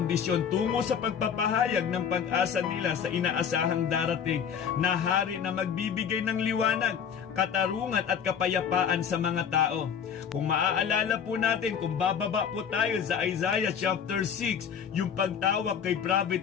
tungo sa pagpapahayag ng pag-asa nila sa inaasahang darating na hari na magbibigay ng liwanag, katarungan at kapayapaan sa mga tao. Kung maaalala po natin, kung bababa po tayo sa Isaiah chapter 6, yung pagtawag kay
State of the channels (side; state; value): right; quieter; 7.5 dB